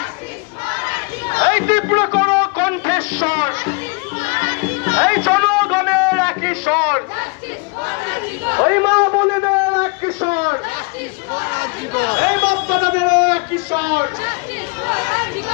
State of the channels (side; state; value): right; quieter; 31.7 dB